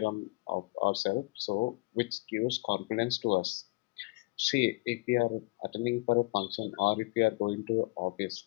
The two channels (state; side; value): quieter; right; 24.2 dB